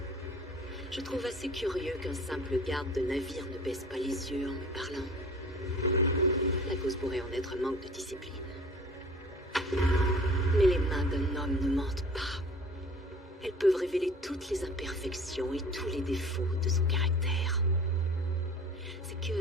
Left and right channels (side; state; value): both; normal; correlation 0.45